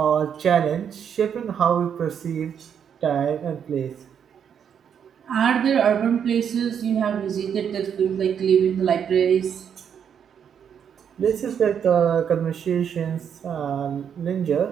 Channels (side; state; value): left; quieter; 8.0 dB